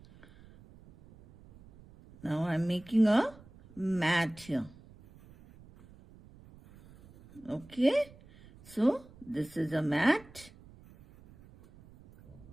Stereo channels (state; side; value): noise; right; rumble, 23 dB below the sound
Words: Now I'm making a mat here. Okay, so this is a mat.